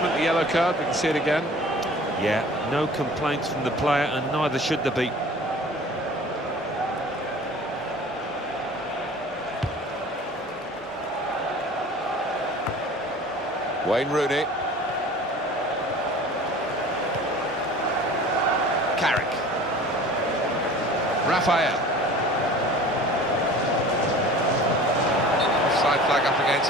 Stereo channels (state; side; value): normal; both; correlation 0.43